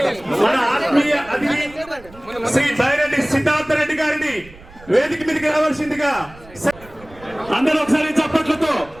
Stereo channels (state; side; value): noise; right; rumble, 21 dB below the sound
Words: ఆత్మీయ అతిథి శ్రీ బైరెడ్డి సిద్ధార్థ రెడ్డి గారిని వేదిక మీదకి రావాల్సిందిగా అందరూ ఒకసారి చప్పట్లతో